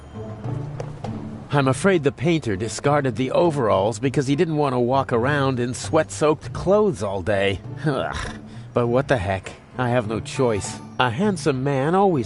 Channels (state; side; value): identical; both; correlation 1.00